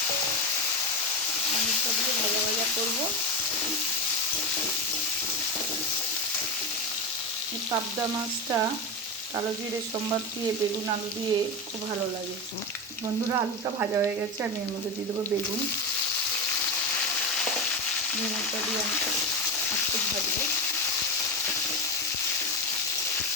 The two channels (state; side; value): normal; both; correlation 0.18